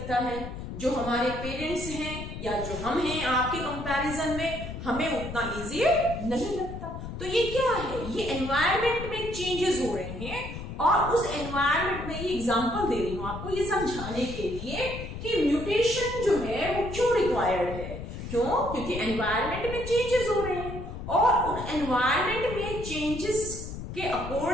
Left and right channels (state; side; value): noise; left; rumble, 8 dB below the sound